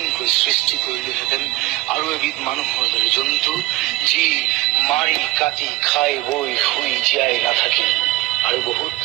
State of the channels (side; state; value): left; quieter; 19.0 dB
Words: সৃষ্টি কৰিলোহেঁতেন আৰু এবিধ মানুহৰ দৰে জন্তু, যি মাৰি কাটি খাই বৈ শুই জীয়াই নাথাকি আৰু বহুত